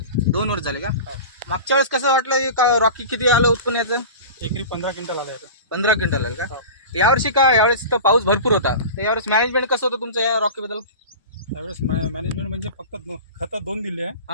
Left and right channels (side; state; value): both; inverted; correlation -0.33